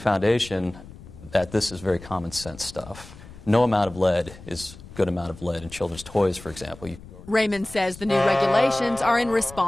that this is very common sense stuff. No amount of lead is a good amount of lead in children's toys, for example. Raymond says the new regulations are in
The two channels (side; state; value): left; noise; rumble, 18 dB below the sound